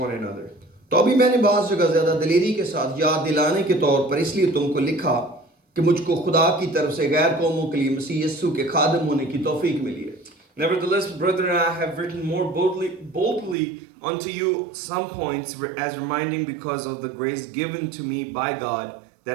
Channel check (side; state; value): left; drops out; at 13.6 s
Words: another. तो अभी मैंने बाज़ जगह ज़्यादा दिलेरी के साथ याद दिलाने के तौर पर इसलिए तुमको लिखा कि मुझको खुदा की तरफ से गैर कौमों के लिए मसीह यीशु के खादिम होने की तौफीक मिली है। Nevertheless, brethren, I have written more boldly unto you some points, as reminding because of the grace given to me by God,